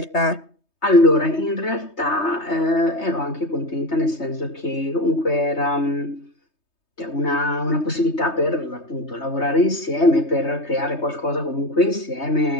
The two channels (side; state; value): right; late; 3.2 ms